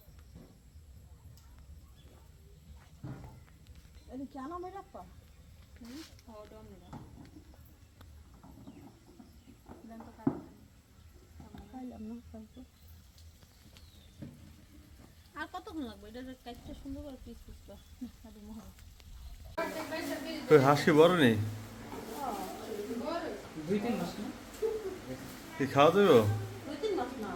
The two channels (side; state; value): both; identical; correlation 1.00